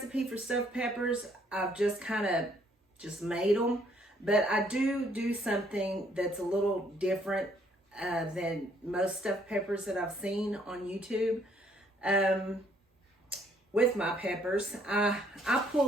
for stuffed peppers. I've just kind of made them. But I do something that's a little different than most stuffed peppers that I've seen on YouTube. With my peppers, I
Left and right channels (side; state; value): both; normal; correlation 0.66